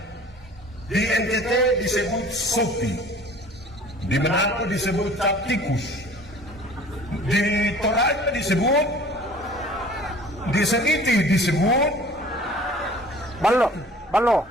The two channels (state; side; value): normal; both; correlation 0.47